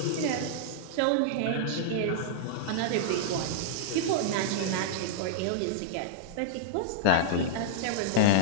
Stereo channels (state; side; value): different; both; correlation -0.02